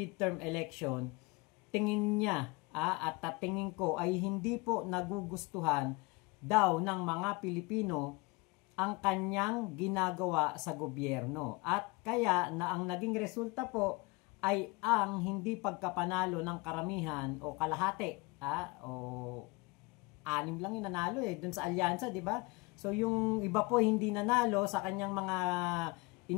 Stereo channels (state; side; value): quieter; right; 25.4 dB